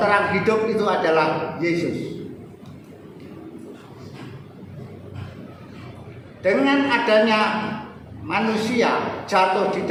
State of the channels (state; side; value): identical; both; correlation 1.00